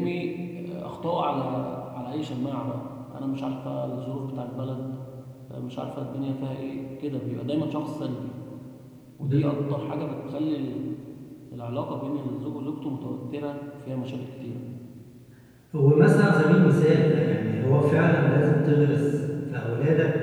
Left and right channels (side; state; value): both; identical; correlation 1.00